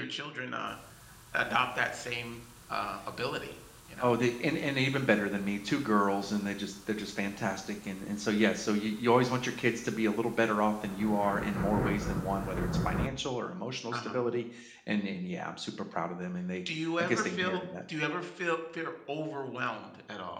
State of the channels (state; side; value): identical; both; correlation 1.00